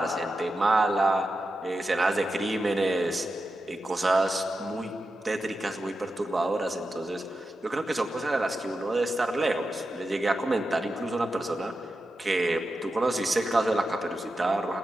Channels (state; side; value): normal; both; correlation 0.90